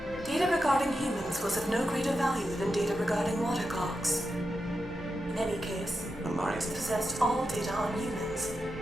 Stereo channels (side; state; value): both; normal; correlation 0.88